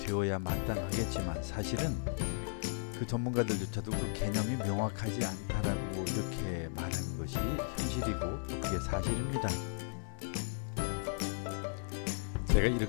마땅하겠지만 사실은 그 전문가들조차도 그 개념이 명확하지 않다라고 이렇게 말하는 것이 현실이고 또 그게 사실입니다. 제가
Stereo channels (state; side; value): silent; right; digital silence